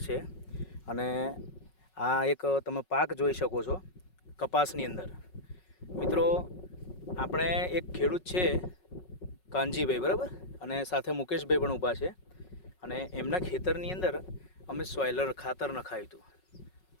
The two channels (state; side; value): late; right; 5.4 ms